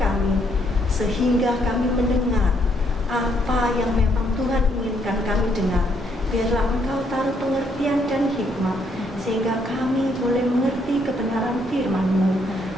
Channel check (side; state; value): both; normal; correlation 0.72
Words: sehingga kami mendengar apa yang memang Tuhan inginkan kami dengar. Biarlah Engkau taruh pengertian dan hikmat, sehingga kami boleh mengerti kebenaran firman-Mu.